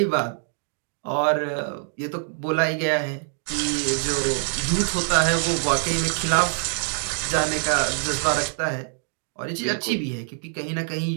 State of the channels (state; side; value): silent; left; digital silence